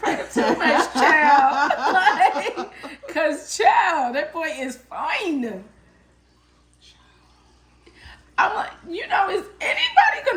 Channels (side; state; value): both; identical; correlation 1.00